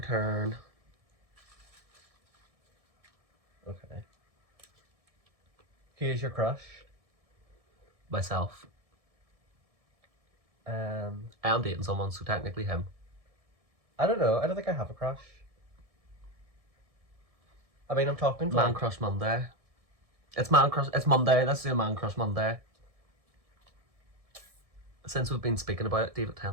turn. Okay. Who is your crush? Myself. I am dating someone, so technically him. I don't know. I don't think I have a crush. I mean, I'm talking to Man like, Crush Monday. It's Monday. Let's do a Man Crush Monday. Since we've been speaking about it, David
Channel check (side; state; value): left; late; 1.7 ms